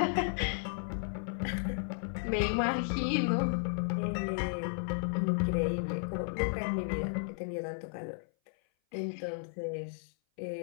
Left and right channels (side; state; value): right; silent; 55 dB below the other